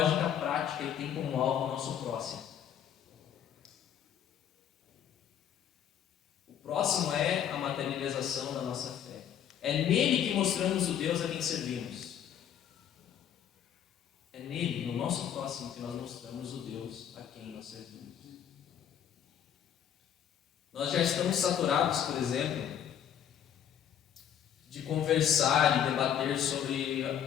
prática e tem como alvo o nosso próximo. O próximo é a materialização da nossa fé. É nele que mostramos o Deus a quem servimos. É nele, no nosso próximo, que nós mostramos o Deus a quem nós servimos. Nós já estamos saturados, por exemplo, de conversar e debater sobre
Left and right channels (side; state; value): right; quieter; 9.3 dB